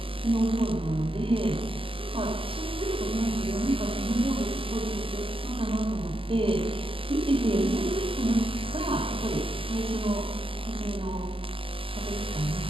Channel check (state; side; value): late; left; 0.26 ms